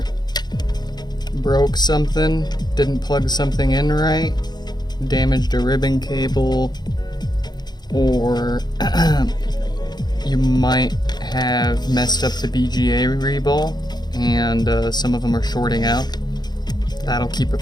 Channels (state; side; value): late; right; 0.20 ms